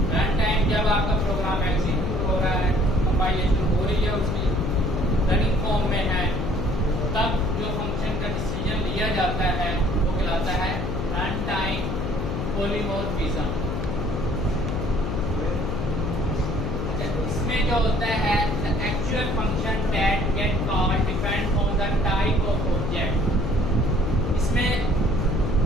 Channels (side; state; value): left; noise; hum, 3 dB below the sound